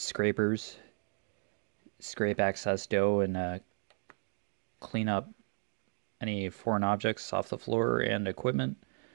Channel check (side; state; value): left; silent; 55 dB below the other